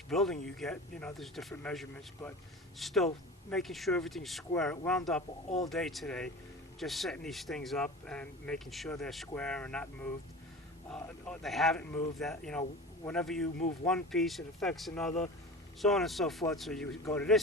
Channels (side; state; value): both; normal; correlation 0.34